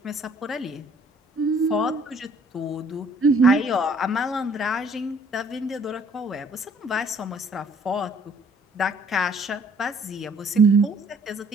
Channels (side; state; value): both; normal; correlation 0.59